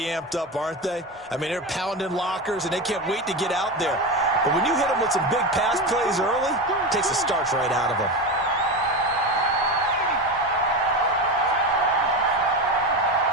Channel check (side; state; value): both; normal; correlation 0.20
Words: amped up, aren't they? I mean, they're pounding lockers, and they can't wait to get out there. But when you hit them with some big pass plays early, it takes the starch right out of them.